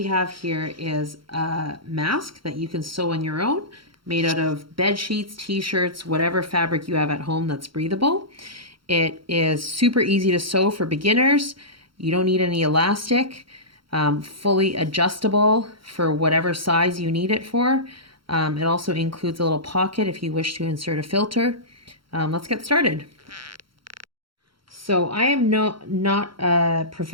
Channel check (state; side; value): late; left; 0.74 ms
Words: have here is a mask that you can sew on your own, made out of bed sheets, t-shirts, whatever fabric you have at home that's breathable. It is super easy to sew for beginners. You don't need any elastic, fully adjustable for whatever size you need it for. It also includes a little pocket if you wish to insert a filter. Let's get started. So I am not a